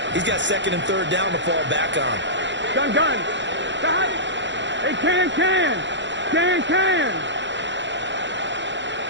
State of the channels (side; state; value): left; late; 0.53 ms